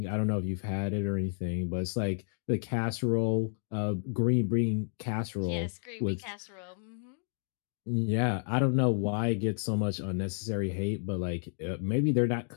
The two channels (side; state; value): right; silent; digital silence